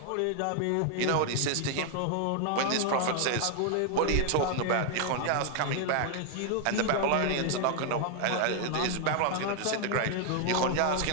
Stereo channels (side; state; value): both; different; correlation 0.00